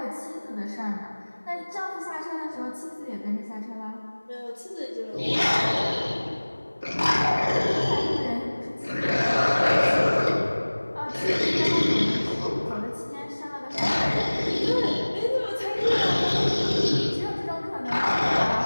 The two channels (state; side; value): inverted; both; correlation -1.00